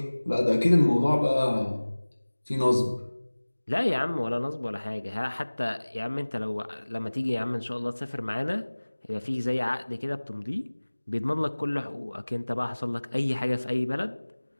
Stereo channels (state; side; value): inverted; both; correlation -1.00